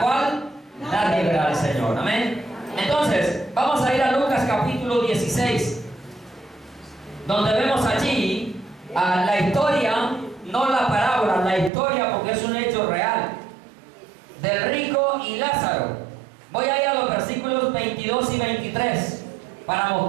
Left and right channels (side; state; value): left; drops out; at 11.7 s